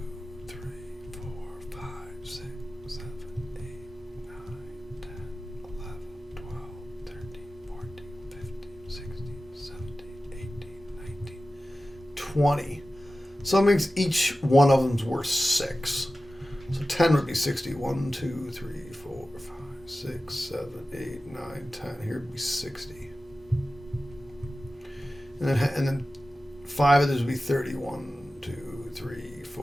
3, 4, 5, 6, 7, 8, 9, 10, 11, 12, 13, 14, 15, 16, 17, 18, 19, 20. So that means each one of them's worth 6. So 10 would be 60. 1, 2, 3, 4, 5, 6, 7, 8, 9, 10. Here would be 60. And then 5 of these would be 30. 1, 2, 3,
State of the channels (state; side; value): normal; both; correlation 0.94